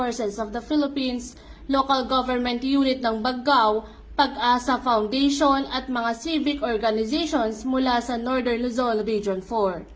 of the Philippines, Local Government Unit ng Baggao, Pag-asa Foundation at mga civic organizations mula sa Northern Luzon Region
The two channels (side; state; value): both; identical; correlation 1.00